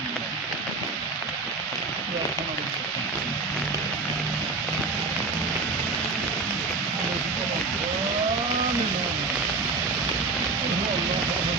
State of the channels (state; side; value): quieter; left; 3.9 dB